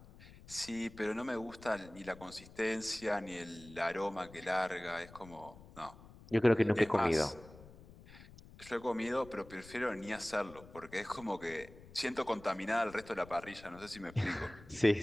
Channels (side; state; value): left; noise; rumble, 19 dB below the sound